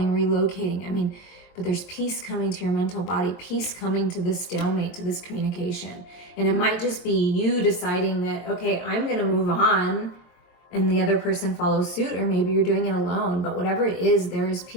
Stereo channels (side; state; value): right; late; 23 ms